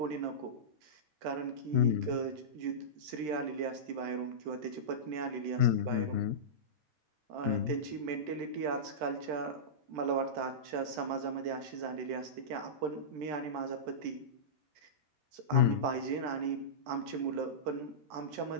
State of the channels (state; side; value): late; left; 13 ms